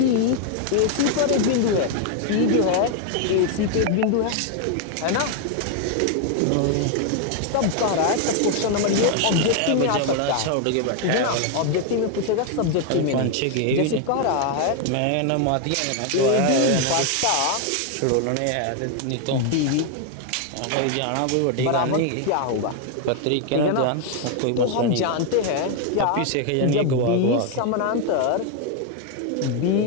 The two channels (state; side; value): different; both; correlation 0.01